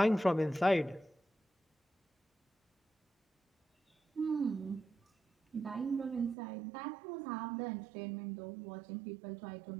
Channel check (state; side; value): drops out; left; at 6.4 s